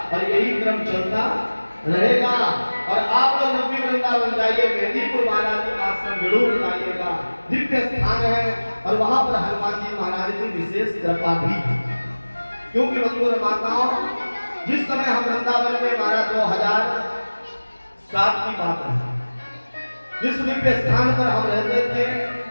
और यही क्रम चलता रहेगा। और आप लोग जब भी वृंदावन जाइए, मेहंदीपुर बालाजी आश्रम जरूर जाइएगा। दिव्य स्थान है और वहां पर हनुमान जी महाराज की विशेष कृपा भी है। क्योंकि बंधुओं माताओं, जिस समय हम वृंदावन में महाराज 2007 की बात है, जिस दिव्य स्थान पर हम रहते थे,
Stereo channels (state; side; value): inverted; both; correlation -1.00